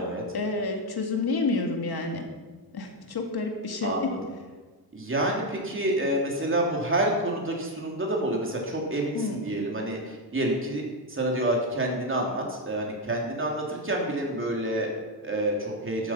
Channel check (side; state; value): both; normal; correlation 0.05